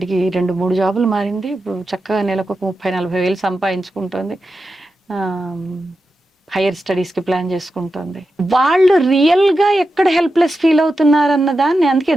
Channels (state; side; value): normal; both; correlation 0.90